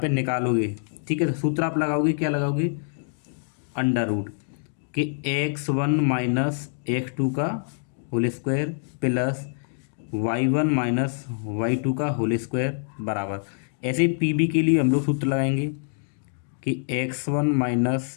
निकालोगे, ठीक है, तो सूत्र आप लगाओगे, क्या लगाओगे, अंडर रूट के x1 - x2 का whole square plus y1 - y2 का होल स्क्वायर बराबर, ऐसे PB के लिए हम लोग सूत्र लगाएंगे कि x1 -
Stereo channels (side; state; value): right; silent; digital silence